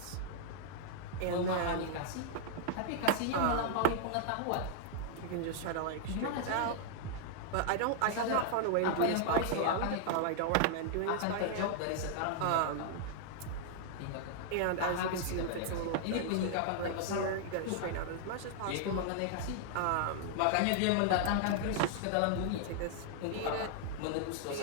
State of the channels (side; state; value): both; different; correlation -0.01